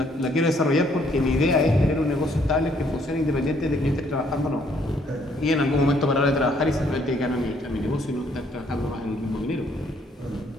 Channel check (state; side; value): normal; both; correlation 0.66